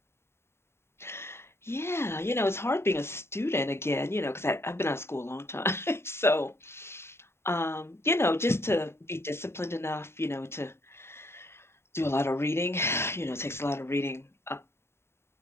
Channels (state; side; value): late; right; 0.12 ms